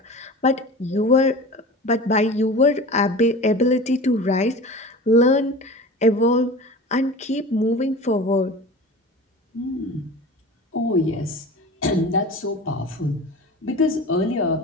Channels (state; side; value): normal; both; correlation 0.35